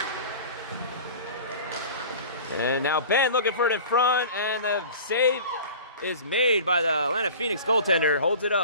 And now Ben looking for it in front, and the save is made by the Atlanta Phoenix goaltender. Holds it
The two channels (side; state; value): both; inverted; correlation -0.40